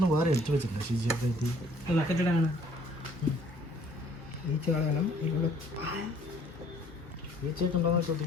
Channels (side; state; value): both; normal; correlation 0.58